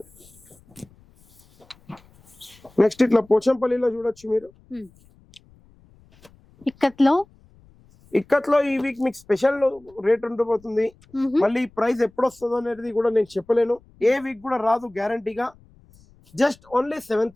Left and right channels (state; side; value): noise; left; rumble, 29 dB below the sound